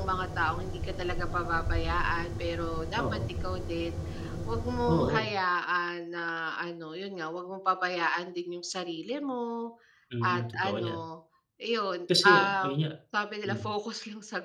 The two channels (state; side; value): identical; both; correlation 1.00